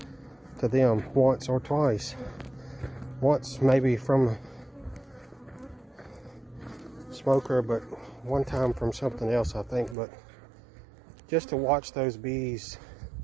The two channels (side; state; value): left; drops out; at 10.0 s